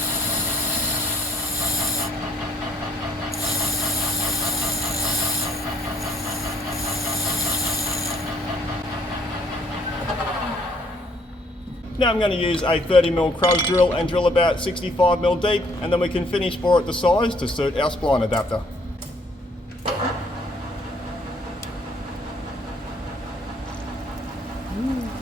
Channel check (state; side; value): normal; both; correlation 0.65